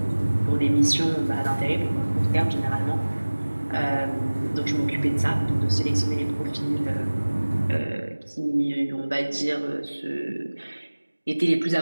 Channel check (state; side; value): inverted; both; correlation -1.00